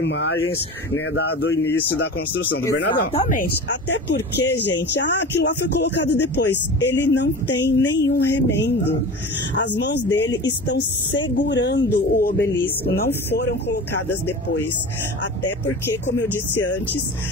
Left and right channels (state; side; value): normal; both; correlation 0.33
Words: né, do início da construção do Bernardão. Exatamente. Até porque, gente, aquilo lá foi colocado depois. Ele não tem nenhum remendo. As mãos dele estão segurando o obelisco, não foram colocadas depois. Até porque, como eu disse antes,